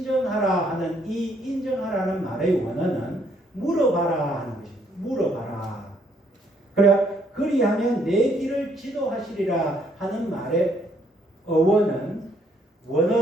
하는 이 인정하라는 말의 원어는 물어봐라 하는 것입니다. 물어봐라. 그래, 그리하면 내 길을 지도하시리라 하는 말의 어원은,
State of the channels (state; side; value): normal; both; correlation 0.69